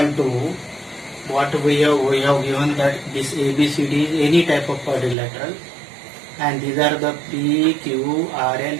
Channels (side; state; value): left; drops out; at 5.2 s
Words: what we have given that this ABCD is any type of quadrilateral, and these are the P, Q, R and